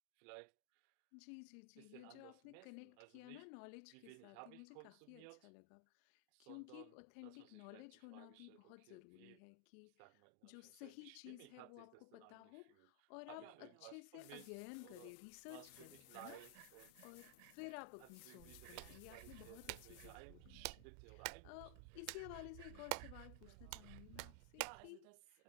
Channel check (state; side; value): different; both; correlation 0.00